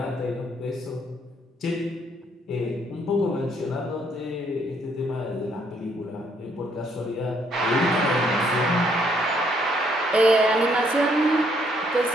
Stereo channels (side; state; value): both; normal; correlation 0.69